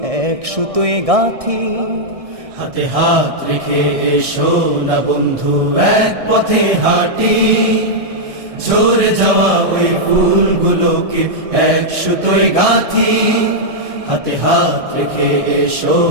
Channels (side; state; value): left; late; 1.6 ms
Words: এক সুতোয় গাঁথি। হাতে হাত রেখে এসো না বন্ধু, এক পথে হাঁটি। ঝরে যাওয়া ওই ফুলগুলোকে এক সুতোয় গাঁথি। হাতে হাত রেখে এসো